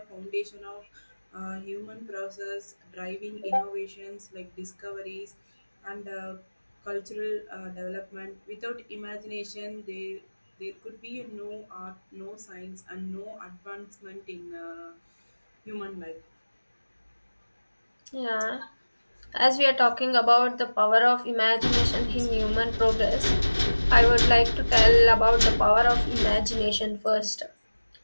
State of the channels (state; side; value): inverted; both; correlation -1.00